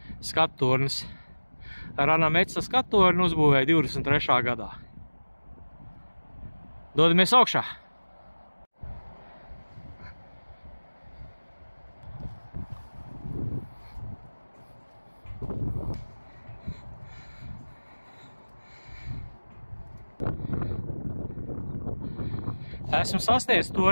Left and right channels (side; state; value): both; inverted; correlation -1.00